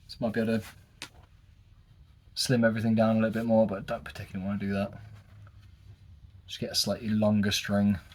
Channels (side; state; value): both; identical; correlation 1.00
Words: So might be able to slim everything down a little bit more, but I don't particularly want to do that. Just get a slightly longer string.